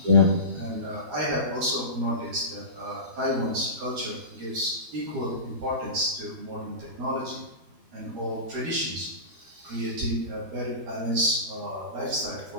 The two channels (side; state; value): left; late; 12 ms